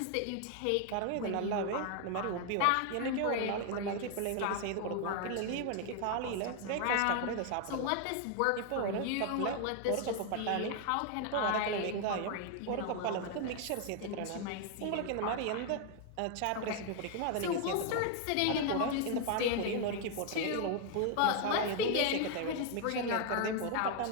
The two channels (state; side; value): different; both; correlation 0.00